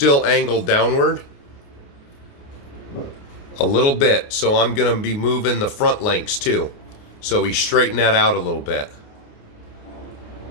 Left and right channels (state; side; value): late; right; 29 ms